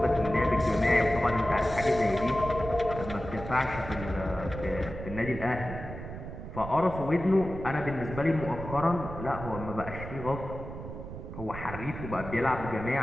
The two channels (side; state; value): right; noise; rumble, 9 dB below the sound